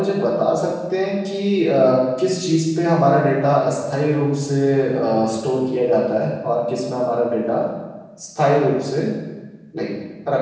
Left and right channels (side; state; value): both; identical; correlation 1.00